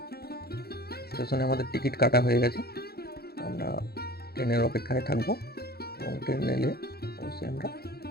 স্টেশনে আমাদের টিকিট কাটা হয়ে গেছে। আমরা ট্রেনের অপেক্ষায় থাকবো এবং ট্রেন এলে অবশ্যই আমরা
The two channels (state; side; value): late; right; 0.46 ms